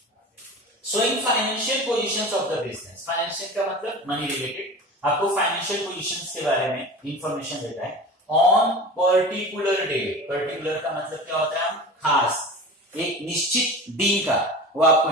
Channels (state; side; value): normal; both; correlation 0.34